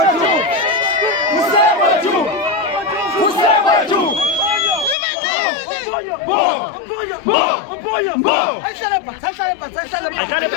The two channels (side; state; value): right; drops out; at 5.0 s